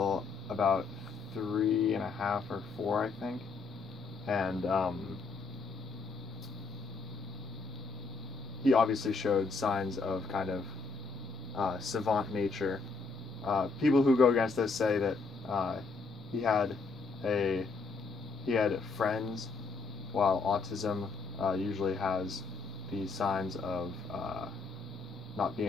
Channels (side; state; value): right; quieter; 4.3 dB